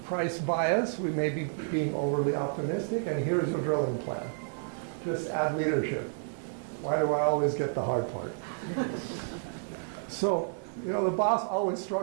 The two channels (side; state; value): left; silent; digital silence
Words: price bias, we may be being overly optimistic, and here's your drilling plan. Just add leadership. Why do I always get the hard part? So, you know, the boss always